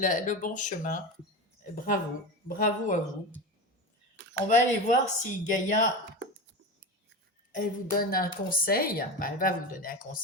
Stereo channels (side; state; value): both; normal; correlation 0.24